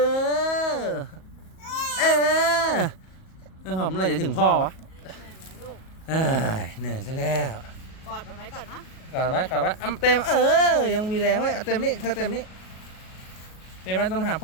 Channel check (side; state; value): right; late; 38 ms